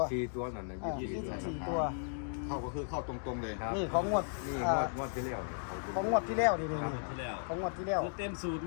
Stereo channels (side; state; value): right; silent; digital silence